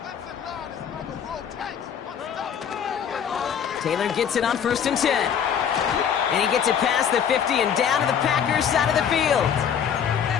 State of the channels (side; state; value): right; quieter; 8.1 dB